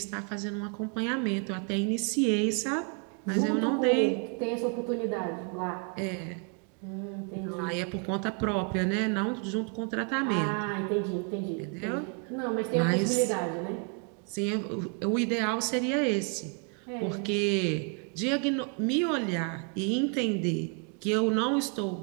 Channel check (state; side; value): quieter; left; 38.2 dB